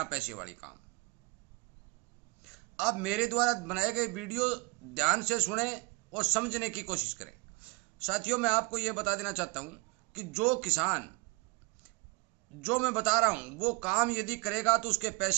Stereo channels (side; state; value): left; quieter; 26.9 dB